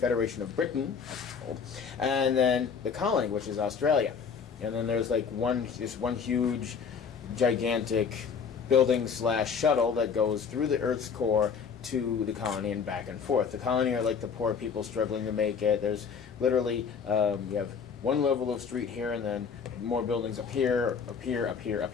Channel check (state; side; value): quieter; right; 6.2 dB